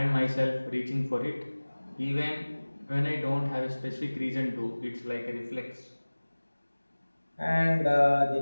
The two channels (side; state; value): both; inverted; correlation -1.00